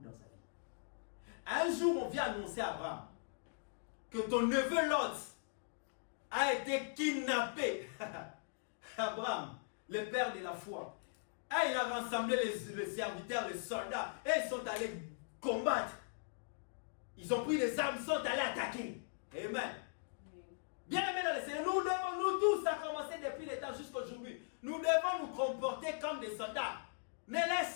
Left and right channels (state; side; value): silent; right; digital silence